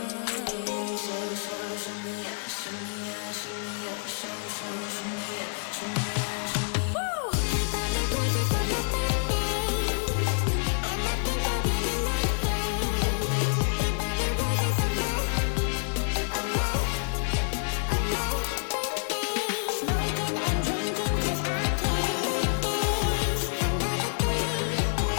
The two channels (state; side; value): silent; right; digital silence